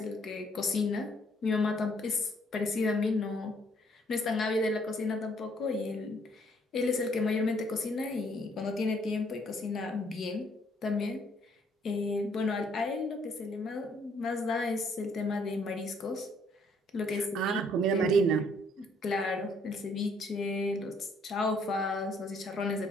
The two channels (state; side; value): normal; both; correlation 0.66